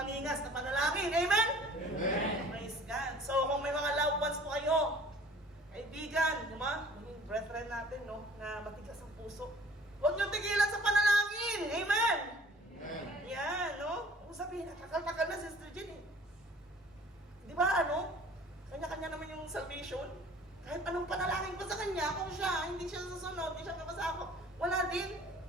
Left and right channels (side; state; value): both; normal; correlation 0.51